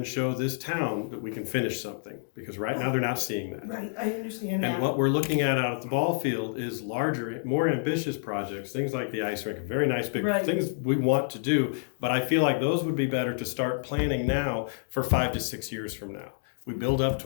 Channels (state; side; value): silent; right; digital silence